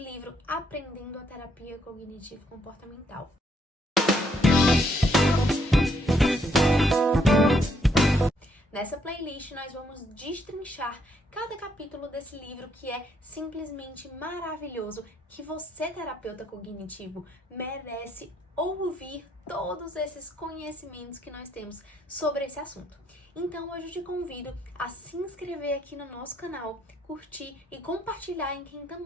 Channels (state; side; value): normal; both; correlation 0.72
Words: Aprendendo a Terapia Cognitivo-Comportamental. Nessa playlist nós vamos destrinchar cada capítulo desse livro que é simplesmente maravilhoso, que você, terapeuta cognitivo, merece ouvir todos esses conhecimentos que nós temos sobre esse assunto. Então hoje eu te convido a se inscrever aqui no nosso canal, curtir e compartilhar em quem